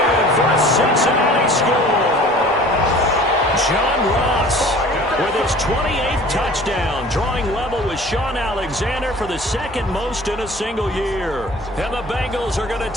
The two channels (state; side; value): normal; both; correlation 0.46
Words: for a Cincinnati score. John Ross with his 28th touchdown, drawing level with Sean Alexander for the 2nd most in a single year. And the Bengals are going to